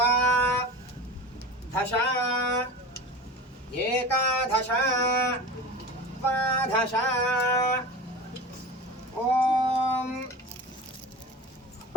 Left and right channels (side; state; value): both; normal; correlation 0.32